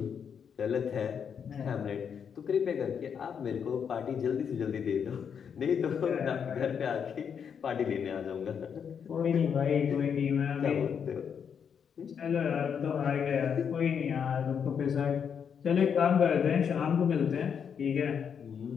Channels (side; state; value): right; quieter; 7.3 dB